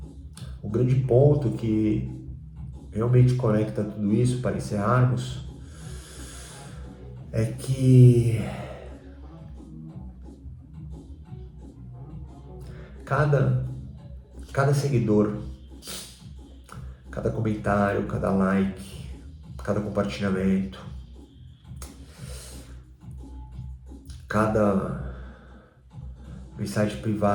O grande ponto que realmente conecta tudo isso para encerrarmos é que cada, cada seguidor, cada comentário, cada like, cada compartilhamento, cada mensagem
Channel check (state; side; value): identical; both; correlation 1.00